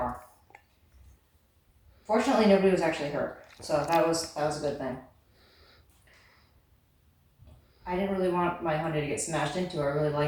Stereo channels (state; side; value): identical; both; correlation 1.00